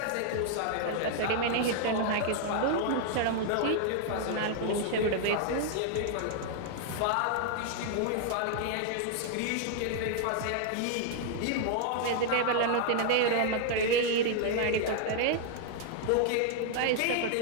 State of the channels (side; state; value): both; different; correlation -0.01